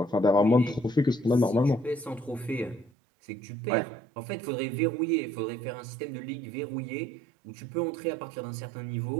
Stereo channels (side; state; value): left; drops out; at 2.9 s